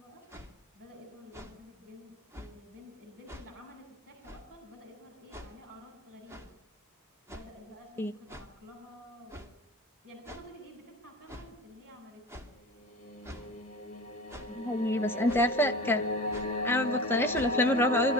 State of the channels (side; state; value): both; normal; correlation 0.34